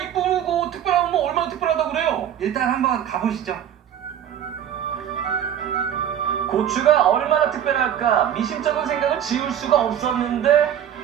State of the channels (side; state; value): left; quieter; 9.9 dB